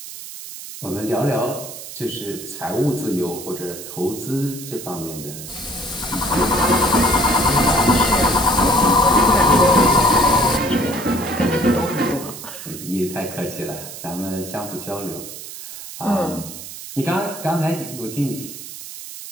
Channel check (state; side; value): noise; right; hiss, 12 dB below the sound